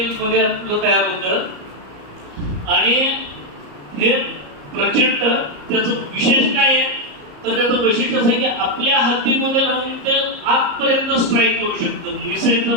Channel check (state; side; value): late; left; 34 ms